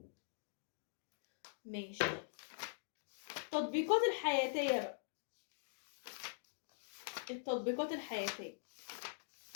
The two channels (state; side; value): silent; right; digital silence